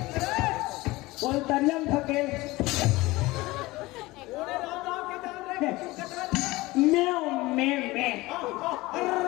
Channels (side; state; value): right; quieter; 20.3 dB